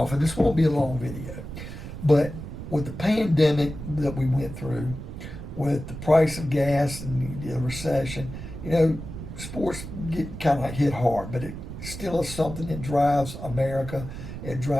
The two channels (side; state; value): right; noise; rumble, 9 dB below the sound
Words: and this won't be a long video. But with the pandemic that we went through, with the price of gas and the recession, sports get kind of like hit hard, but it still is something that drives America. It